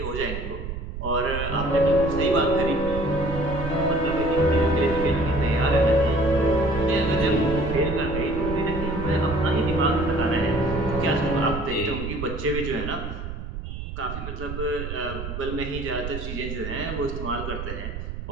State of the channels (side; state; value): right; noise; rumble, 6 dB below the sound